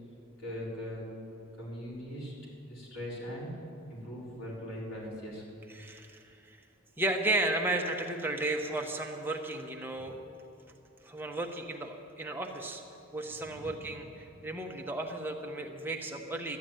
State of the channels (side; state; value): both; normal; correlation 0.35